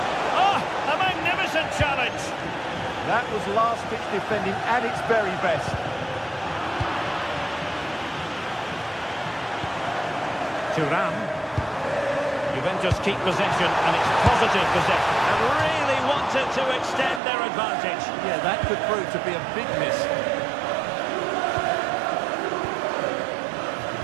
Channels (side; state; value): left; drops out; at 17.2 s